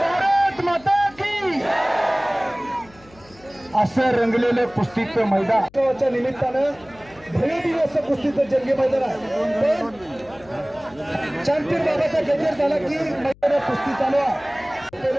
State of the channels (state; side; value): noise; left; hum, 26 dB below the sound